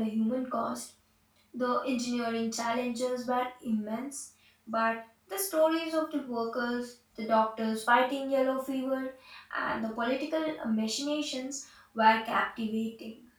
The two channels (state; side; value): identical; both; correlation 1.00